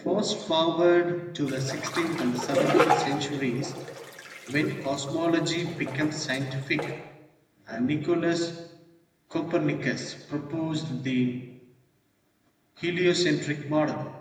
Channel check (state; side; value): identical; both; correlation 1.00